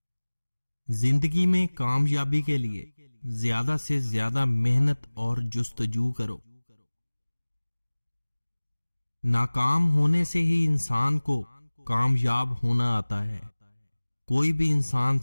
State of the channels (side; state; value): both; inverted; correlation -1.00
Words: زندگی میں کامیابی کے لیے زیادہ سے زیادہ محنت اور جستجو کرو۔ ناکام ہونے سے ہی انسان کو کامیاب ہونا آتا ہے، کوئی بھی انسان